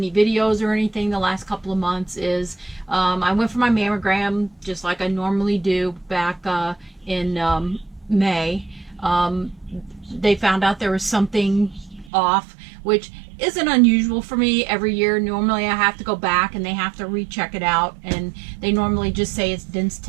videos or anything the last couple of months is I went for my mammogram just like I normally do back in May. They found out there was something off, which isn't unusual for me every year. Normally I have to go back and they have to recheck it out, and they normally just say it's dense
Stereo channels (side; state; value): left; drops out; at 12.1 s